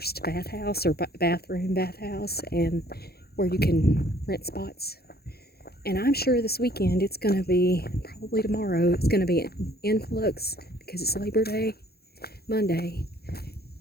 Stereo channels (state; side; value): late; right; 0.46 ms